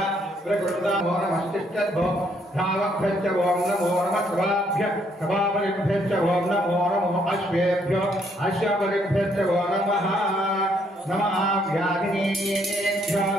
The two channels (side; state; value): both; normal; correlation 0.70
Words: प्रकृतामो नमस्तिष्ठद्भो धावभ्यश्च ओं नमो नमः सभाभ्यः सभापरिभ्यश्च ओं नमो नमो अश्वेभ्यो अश्वपरिभ्यश्च ओं नमः नमः व्याधिनेभ्यो